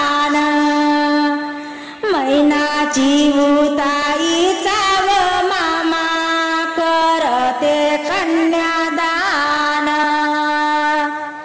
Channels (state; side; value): identical; both; correlation 1.00